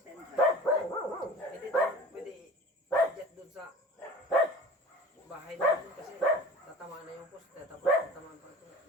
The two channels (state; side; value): normal; both; correlation 0.39